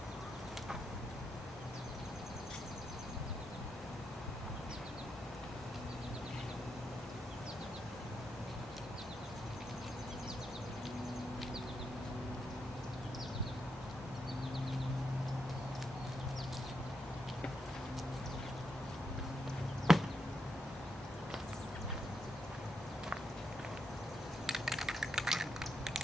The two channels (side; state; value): both; normal; correlation 0.82